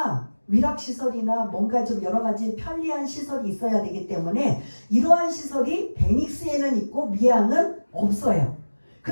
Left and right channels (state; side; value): inverted; both; correlation -1.00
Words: 위락시설이나 뭔가 좀 여러 가지 편리한 시설이 있어야 되기 때문에 이러한 시설이 베닉스에는 있고 미항은 없어요.